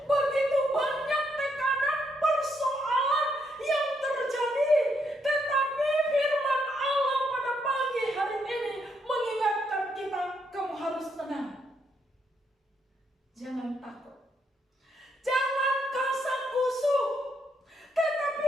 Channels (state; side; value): normal; both; correlation 0.76